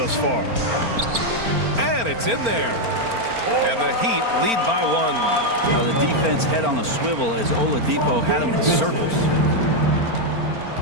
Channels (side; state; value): left; late; 4.4 ms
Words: far. And it's in there. And the Heat lead by 1. Now the defense head on a swivel as Oladipo had him in circles.